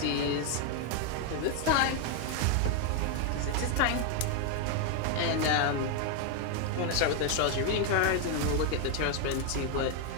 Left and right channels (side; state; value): both; different; correlation 0.01